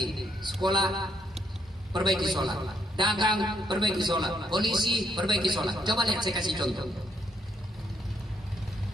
Sekolah, perbaiki sholat. Dagang, perbaiki sholat. Polisi, perbaiki sholat. Coba lihat, saya kasih contoh.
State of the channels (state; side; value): normal; both; correlation 0.73